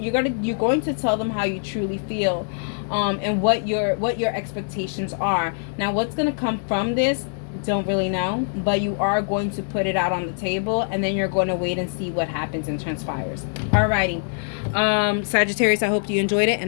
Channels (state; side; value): silent; right; digital silence